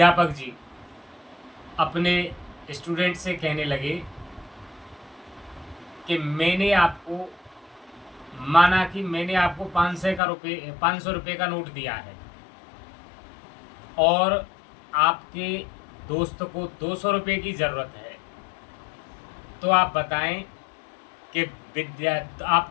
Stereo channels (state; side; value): drops out; right; at 10.2 s